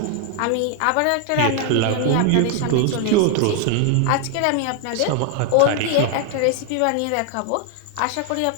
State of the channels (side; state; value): both; different; correlation 0.00